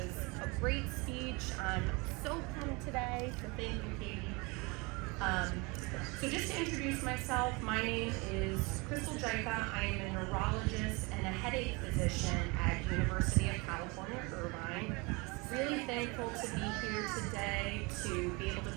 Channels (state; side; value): quieter; left; 27.3 dB